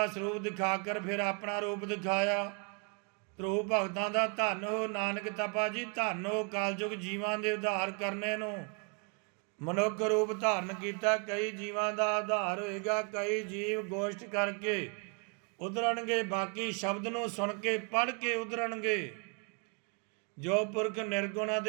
ਸਰੂਪ ਦਿਖਾ ਕਰ ਫਿਰ ਆਪਣਾ ਰੂਪ ਦਿਖਾਇਆ। ਧਰੂ ਭਗਤਾਂ ਦਾ ਧੰਨ ਹੋ ਨਾਨਕ ਤਪਾ ਜੀ, ਧੰਨ ਹੋ ਕਲਯੁਗ ਜੀਵਾਂ ਦੇ ਉਧਾਰ ਕਰਨੇ ਨੂੰ ਮਨੁੱਖ ਰੂਪ ਧਾਰਨ ਕੀਤਾ। ਕਈ ਜੀਵਾਂ ਦਾ ਆਧਾਰ ਹੋਏਗਾ, ਕਈ ਜੀਵ ਗੋਸ਼ਟ ਕਰਕੇ ਉਧਰਨਗੇ, ਬਾਕੀ ਸ਼ਬਦ ਨੂੰ ਸੁਣ ਕੇ ਪੜ੍ਹ ਕੇ ਉਧਰਨਗੇ। ਜੋ ਪੁਰਖ ਨਿਰਗੁਣਾ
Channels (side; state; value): left; quieter; 35.6 dB